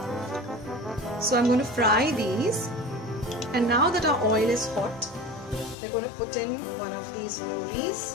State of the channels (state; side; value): drops out; right; at 5.8 s